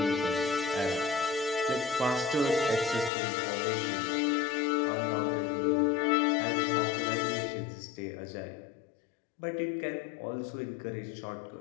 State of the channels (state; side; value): drops out; right; at 3.1 s